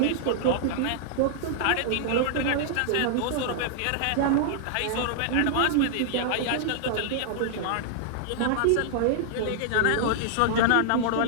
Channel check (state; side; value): different; both; correlation -0.01